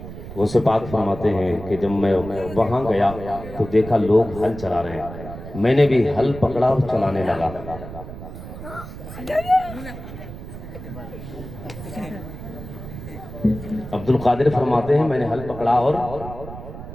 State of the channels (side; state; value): right; noise; rumble, 12 dB below the sound